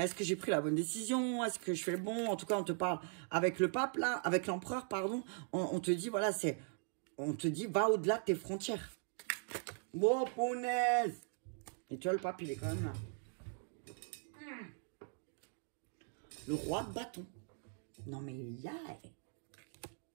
est-ce que j'ai pris la bonne décision? Est-ce que je fais le bon? En tout cas, on te parle avec le pape, là, avec l'empereur, pardon. On te dit, voilà, on te dit, va au-delà de tes frontières. Bon, punaise! Et tu vois, le pape, il est quand même là. Le roi de bâton. Non, mais il y a...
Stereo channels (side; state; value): left; silent; 51 dB below the other